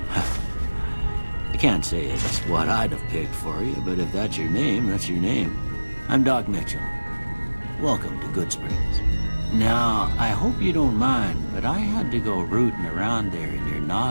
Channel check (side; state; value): both; inverted; correlation -1.00